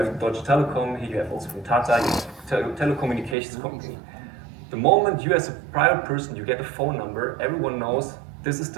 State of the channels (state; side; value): drops out; left; at 3.4 s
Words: Deutsche Telekom, here you have also from Tata, you have telecommunications company. The moment you as a private person, you get a phone number, everyone knows this is